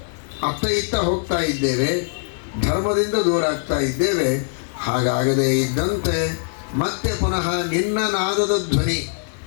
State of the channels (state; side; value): silent; right; digital silence